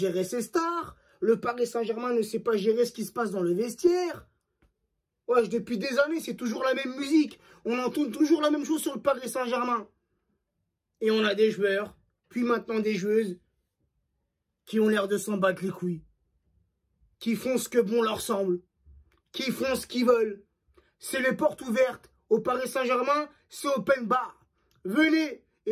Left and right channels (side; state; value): both; identical; correlation 1.00